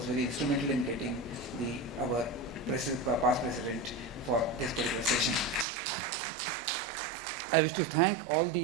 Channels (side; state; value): left; drops out; at 5.7 s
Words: very instrumental in getting our past president for this particular session. I wish to thank all